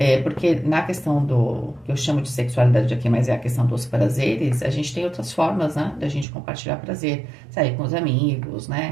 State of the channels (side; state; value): left; drops out; at 6.2 s